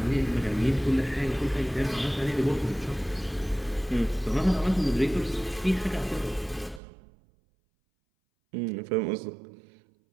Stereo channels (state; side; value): drops out; left; at 6.8 s